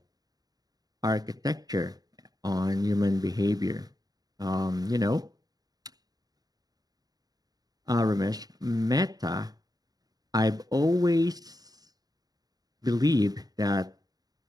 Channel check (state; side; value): late; left; 0.18 ms